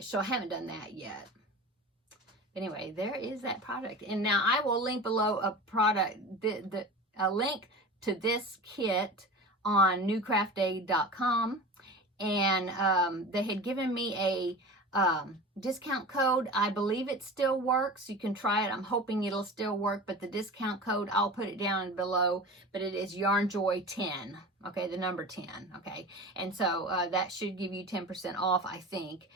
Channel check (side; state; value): both; normal; correlation 0.33